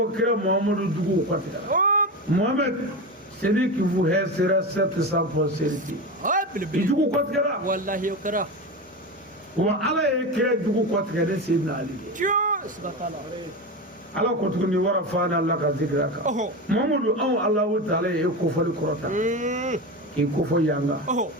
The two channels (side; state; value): both; normal; correlation 0.21